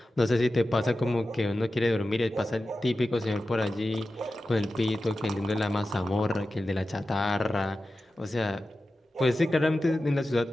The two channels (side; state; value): both; normal; correlation 0.93